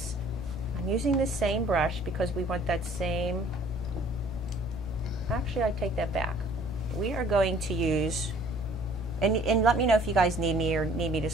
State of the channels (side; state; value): right; noise; hum, 21 dB below the sound